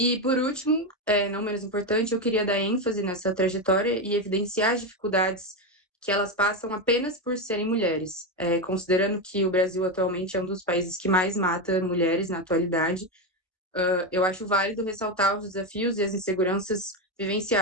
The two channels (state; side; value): normal; both; correlation 0.11